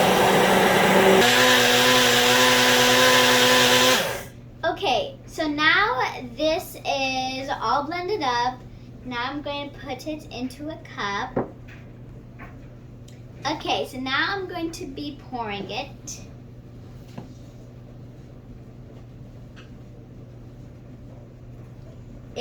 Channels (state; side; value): identical; both; correlation 1.00